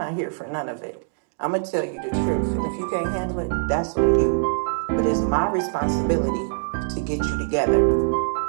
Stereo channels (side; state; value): left; silent; digital silence